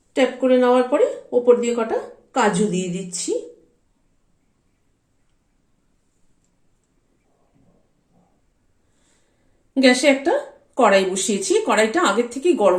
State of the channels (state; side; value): identical; both; correlation 1.00